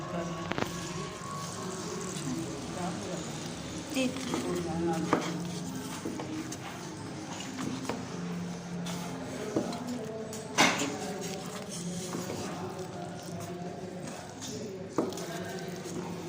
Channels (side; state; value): both; identical; correlation 1.00